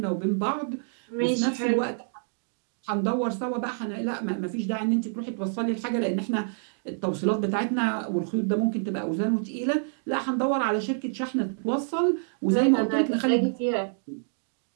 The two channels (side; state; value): left; silent; digital silence